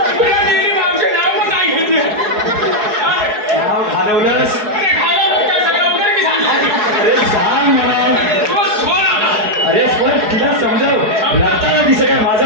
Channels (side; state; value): left; late; 4.7 ms